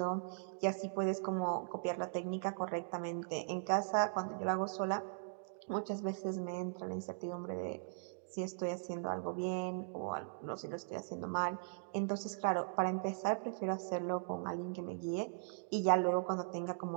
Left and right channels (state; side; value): silent; left; digital silence